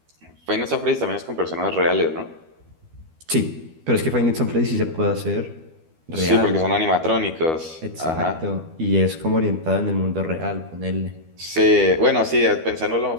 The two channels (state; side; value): late; left; 12 ms